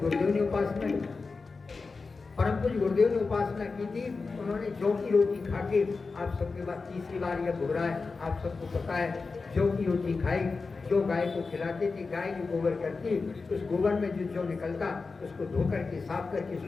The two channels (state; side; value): quieter; right; 4.3 dB